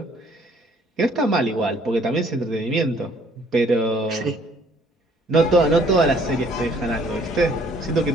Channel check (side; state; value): both; normal; correlation 0.61